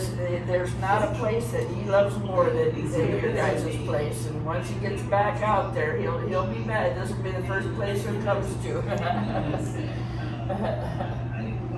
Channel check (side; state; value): both; identical; correlation 1.00